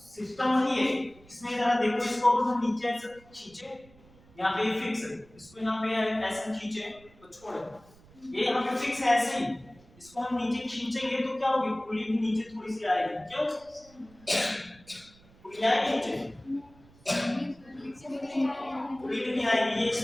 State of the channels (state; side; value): noise; right; rumble, 26 dB below the sound